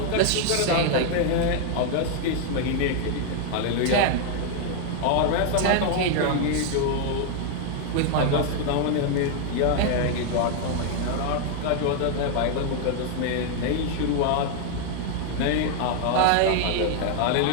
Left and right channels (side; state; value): both; different; correlation 0.00